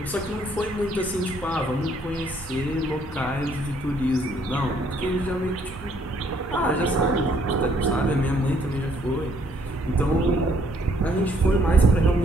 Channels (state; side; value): normal; both; correlation 0.66